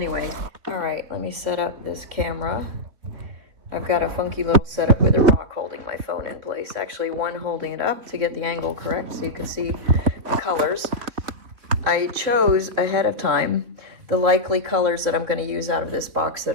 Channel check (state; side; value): late; left; 3.6 ms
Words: all right, let me set up this camera. I've got a funky little setup with a rock holding my phone in place. Actually, one holding it up to get the angle correct so you can see the colors. I chose ahead of time the likely colors that I'm going to use out of this box that